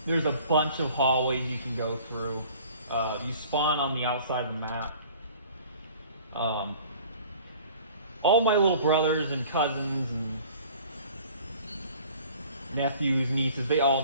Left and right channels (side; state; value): both; inverted; correlation -0.49